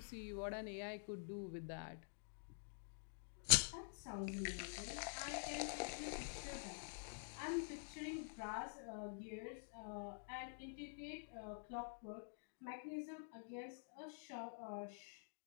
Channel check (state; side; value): silent; right; digital silence